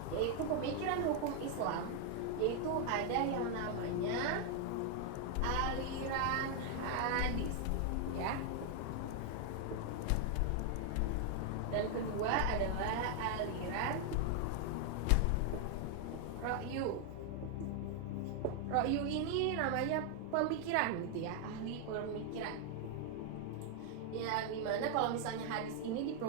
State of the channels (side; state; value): both; different; correlation 0.00